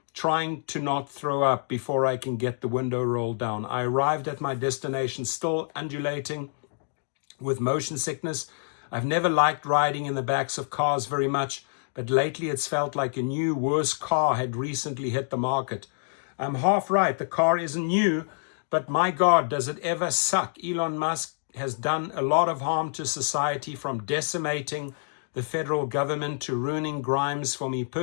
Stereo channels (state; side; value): silent; right; digital silence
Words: trying to not throw up before I can get the window rolled down. I arrived at my destination still undulating with motion sickness. I've never liked riding in the backs of cars very much, but lately it's felt like a new, worse car had recently hit the market. I'm half right. The car isn't new, but my God, does it ever suck. Elon Musk has done a lot of harm to society, from decimating the federal government to ruining Grimes for me